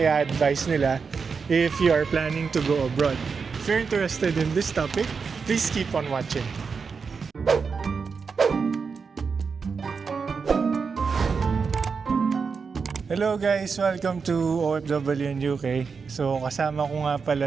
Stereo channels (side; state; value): left; quieter; 5.4 dB